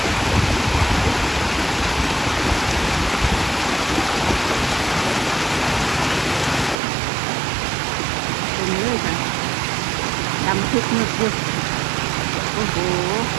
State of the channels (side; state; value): left; drops out; at 6.8 s